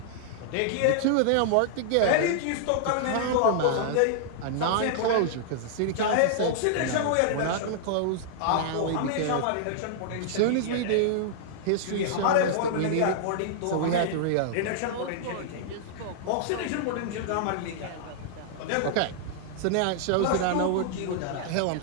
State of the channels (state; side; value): different; both; correlation -0.01